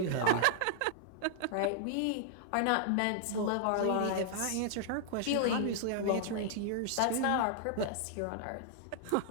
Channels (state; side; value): different; both; correlation -0.01